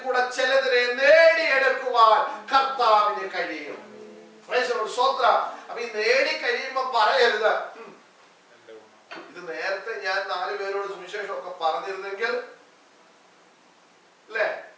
കൂടെ ചിലതിനെ നേടിയെടുക്കുവാൻ കർത്താവിന് കഴിയും. അപ്പൊ ഈ നേടി കഴിയുമ്പോ പറയരുത്, ഇത് നേരത്തെ ഞാൻ 4 പേരോട് സുവിശേഷം ഒക്കെ പറഞ്ഞിരുന്നെങ്കിൽ, അല്ലേ?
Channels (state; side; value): identical; both; correlation 1.00